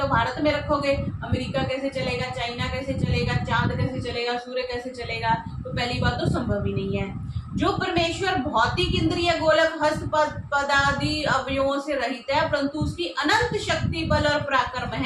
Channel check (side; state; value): both; identical; correlation 1.00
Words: भारत में रखोगे, अमेरिका कैसे चलेगा, चाइना कैसे चलेगा, चांद कैसे चलेगा, सूर्य कैसे चलेगा, तो पहली बात तो संभव ही नहीं है। जो परमेश्वर भौतिक इंद्रिय गोलक हस्त पदादि अवयवों से रहित है, परंतु उसकी अनंत शक्ति, बल और पराक्रम